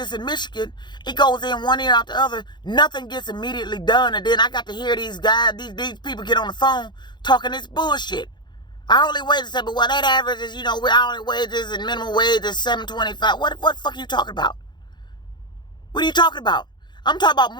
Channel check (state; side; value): late; right; 0.21 ms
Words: in Michigan. It goes in one ear out the other. Nothing gets immediately done. And then I got to hear these guys, these people get on the phone talking this bullshit. Hourly wages said, but well, that average is, we're hourly wages and minimum wage is $7.25. What the fuck are you talking about? What are you talking about? I'm talking about